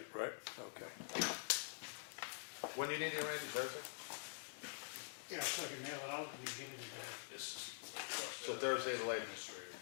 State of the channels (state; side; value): silent; right; digital silence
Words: right? Okay. When do you need it, Randy, Thursday? Yeah, so you mail it out, and you get it in there. This is. So Thursday the latest. Administrator,